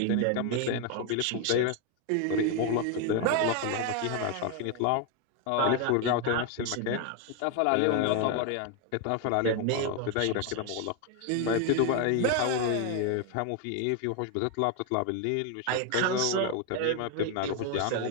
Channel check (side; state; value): both; different; correlation 0.01